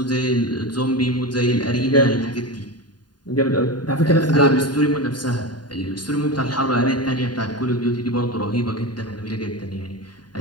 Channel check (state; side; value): late; right; 0.70 ms